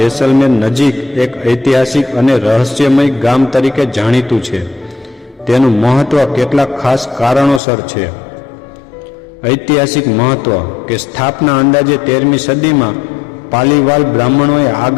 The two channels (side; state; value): right; drops out; at 7.6 s